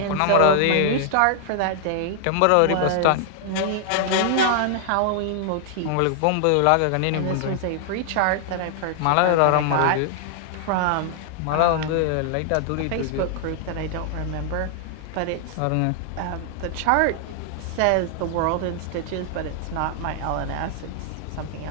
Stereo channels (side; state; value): both; different; correlation -0.01